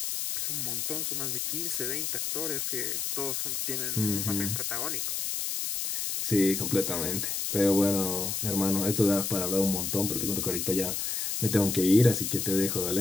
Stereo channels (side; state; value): left; noise; hiss, 1 dB below the sound